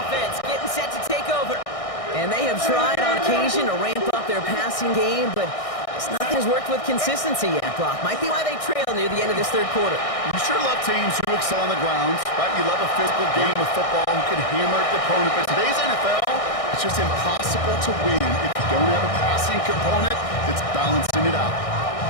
getting set to take over. And they have tried on occasion to ramp up their passing game, but nothing has worked with consistency yet, Brock. Might be why they trail near the end of this 3rd quarter. You sure love teams who excel on the ground, right? You love a physical game of football who can hammer the opponent. But today's NFL, it's just impossible to win if you don't have a passing component that's balancing it out.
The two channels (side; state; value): right; late; 1.6 ms